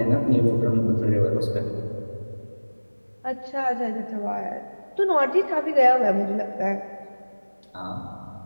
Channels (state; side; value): inverted; both; correlation -1.00